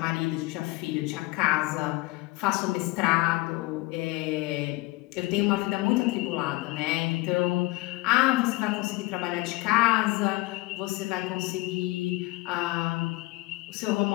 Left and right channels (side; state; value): right; quieter; 21.5 dB